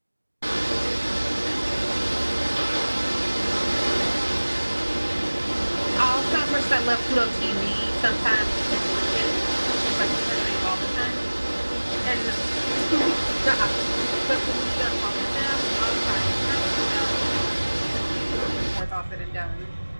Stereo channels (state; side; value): inverted; both; correlation -1.00